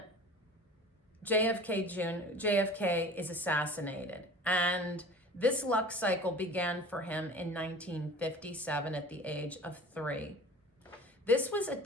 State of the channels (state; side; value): normal; both; correlation 0.41